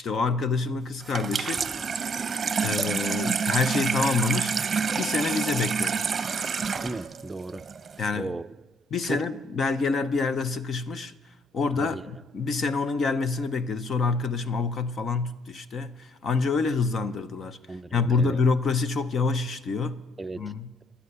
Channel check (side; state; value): both; normal; correlation 0.67